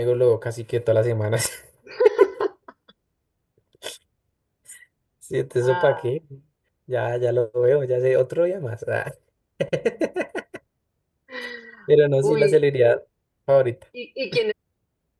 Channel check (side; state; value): both; identical; correlation 1.00